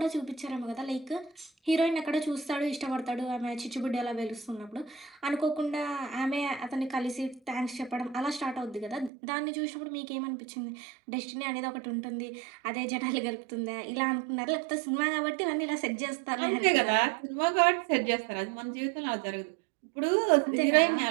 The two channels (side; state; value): left; drops out; at 9.1 s